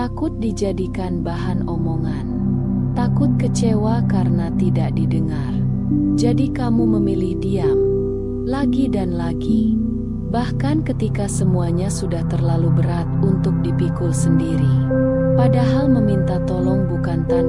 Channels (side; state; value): both; identical; correlation 1.00